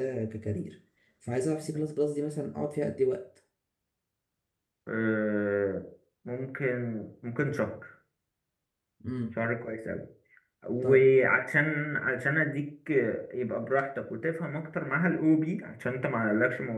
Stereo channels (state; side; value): identical; both; correlation 1.00